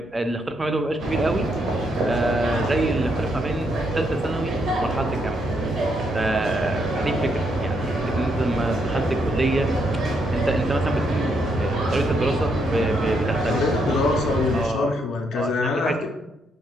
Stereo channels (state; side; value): normal; both; correlation 0.76